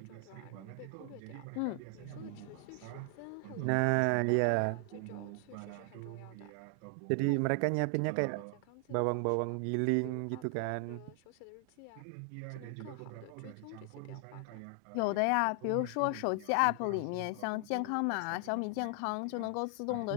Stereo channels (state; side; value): different; both; correlation 0.00